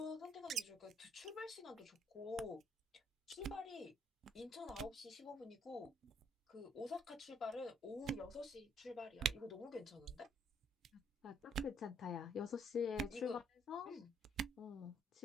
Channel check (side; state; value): both; normal; correlation 0.66